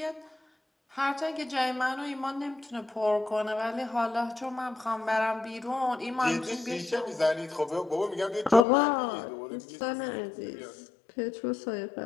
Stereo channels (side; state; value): right; drops out; at 8.7 s